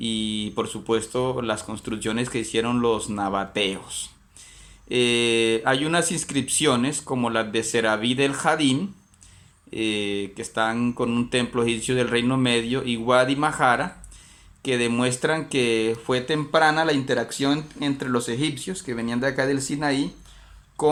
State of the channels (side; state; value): both; identical; correlation 1.00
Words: por supuesto las construcciones que hicieron los nabateos. Hay unas inscripciones como las de Serabí del Jadín, que están con un templo egipcio del Reino Medio, y Wadi Mahara, que demuestran que fue temprana la interacción entre los egipcios que venían de acá del Sinaí